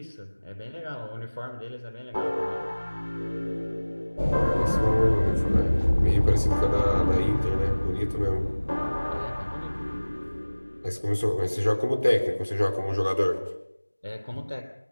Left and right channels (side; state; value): both; inverted; correlation -1.00